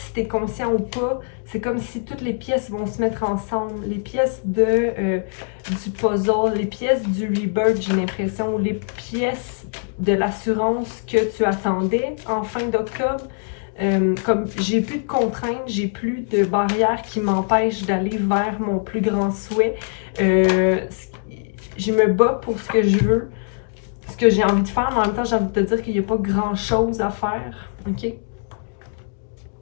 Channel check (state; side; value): silent; right; digital silence